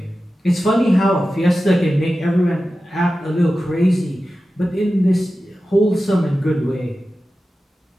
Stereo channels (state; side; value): normal; both; correlation 0.94